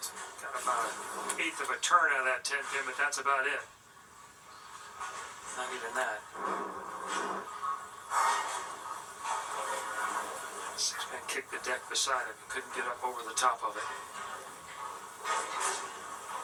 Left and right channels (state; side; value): identical; both; correlation 1.00